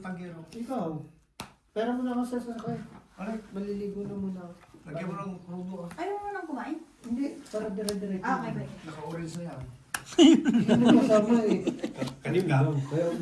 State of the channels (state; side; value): identical; both; correlation 1.00